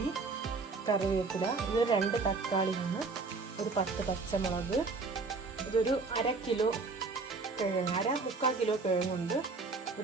കറിവേപ്പില, ഇത് 2 തക്കാളിയാണ്, ഒരു 10 പച്ചമുളക്, ഇതൊരു 1/2 കിലോ കിഴങ്ങ്, 3/4 കിലോ കിഴങ്ങുണ്ട്,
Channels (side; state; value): left; quieter; 4.1 dB